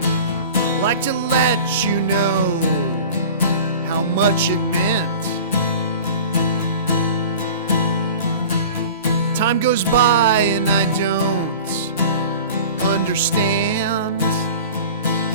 I'd like to let you know how much it meant. Time goes by and I don't understand,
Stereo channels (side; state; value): both; inverted; correlation -0.39